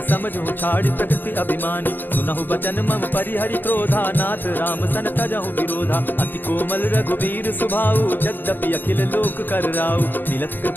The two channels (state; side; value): late; right; 0.091 ms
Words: समझू छाड़ प्रकृति अभिमानी। सुनहु बचन मम परिहरि क्रोधा, नाथ राम सन तजहु विरोधा। अति कोमल रघुवीर सुभाऊ, यद्यपि अखिल लोक कर राऊ। मिलत